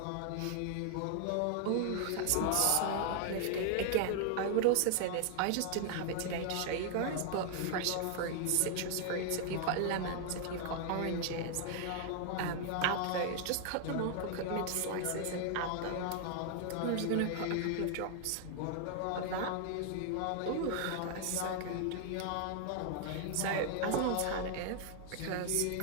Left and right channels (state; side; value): different; both; correlation 0.00